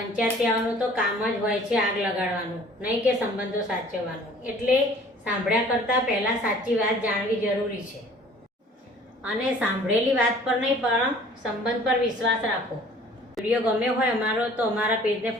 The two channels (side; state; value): both; normal; correlation 0.51